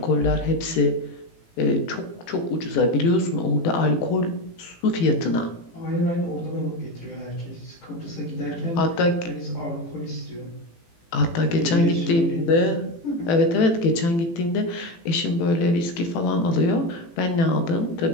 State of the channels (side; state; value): right; late; 18 ms